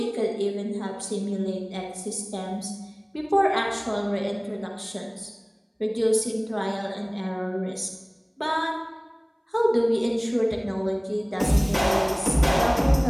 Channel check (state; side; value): identical; both; correlation 1.00